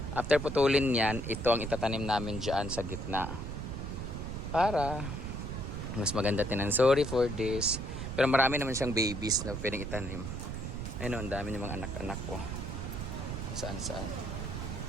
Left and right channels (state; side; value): noise; right; rumble, 5 dB below the sound